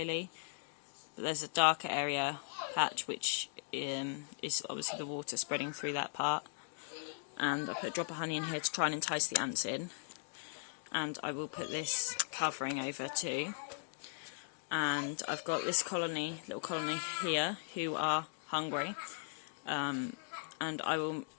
but there's a darker area patch which is obviously the water spreading through that part. And I put a drop of honey in here to try and entice the ants in. And I will put this covering over too. and I've got this little colony here, who are hungry, and I will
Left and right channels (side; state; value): right; silent; digital silence